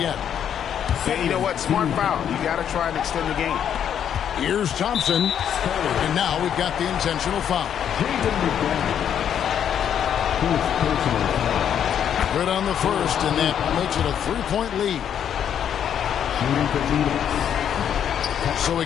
Yeah, you know what? Smart foul. You got to try and extend the game. Here's Thompson. And now we've got the intentional foul. Good on the first, and that makes it a 3-point lead. So he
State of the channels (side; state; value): right; quieter; 9.0 dB